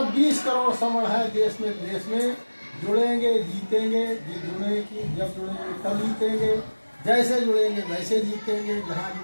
20 करोड़ समर है देश में विदेश में। जुड़ेंगे जीतेंगे, जब जुड़ेंगे तब जीतेंगे, जैसे जुड़ेंगे वैसे जीतेंगे, जहाँ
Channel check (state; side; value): inverted; both; correlation -1.00